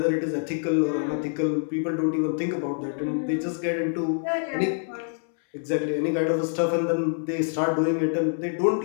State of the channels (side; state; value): right; silent; 61 dB below the other